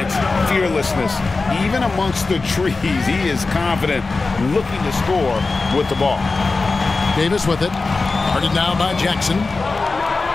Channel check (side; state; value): right; quieter; 3.8 dB